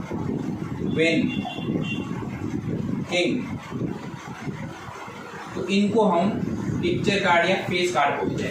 क्वीन, किंग, तो इनको हम पिक्चर कार्ड या फेस कार्ड बोलते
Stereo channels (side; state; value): both; identical; correlation 1.00